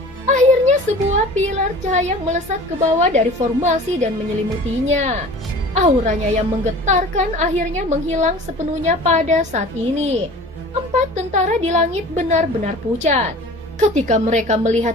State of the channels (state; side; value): normal; both; correlation 0.42